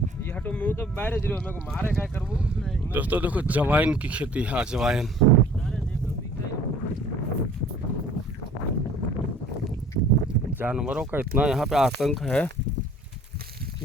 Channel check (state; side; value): normal; both; correlation 0.51